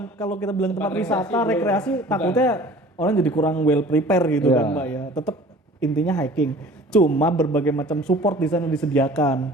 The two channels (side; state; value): both; normal; correlation 0.46